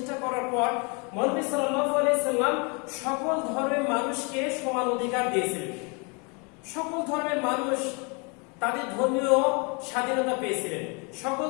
করার পর মহানবী সাল্লাল্লাহু আলাইহি সাল্লাম সকল ধর্মের মানুষকে সমান অধিকার দিয়েছিলেন। সকল ধর্মের মানুষ তাদের ধর্মীয় স্বাধীনতা পেয়েছিলেন, সকল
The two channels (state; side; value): quieter; right; 32.7 dB